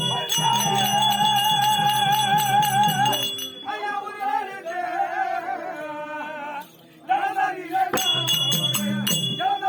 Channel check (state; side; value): identical; both; correlation 1.00